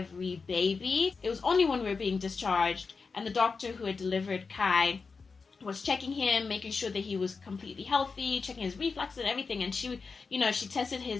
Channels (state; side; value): quieter; right; 4.7 dB